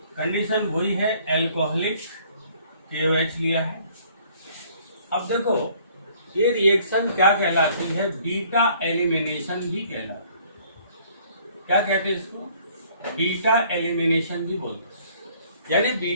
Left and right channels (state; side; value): inverted; both; correlation -0.59